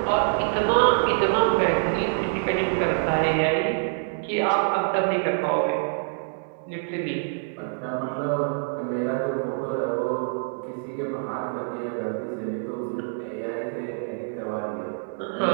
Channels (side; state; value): left; silent; digital silence